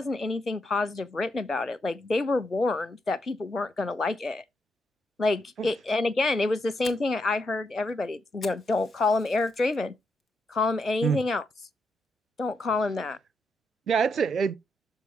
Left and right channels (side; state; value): both; normal; correlation 0.81